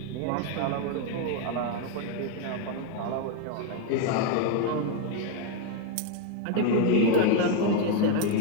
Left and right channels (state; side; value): different; both; correlation 0.01